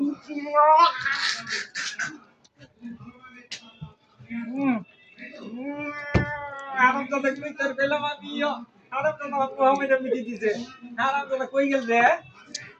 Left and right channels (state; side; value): identical; both; correlation 1.00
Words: হারামজাদা কই তোর পেলাম আমি, হারামজাদা আমার মুহাম্মদ মুতি দিছে, হারামজাদা কই গেল রে?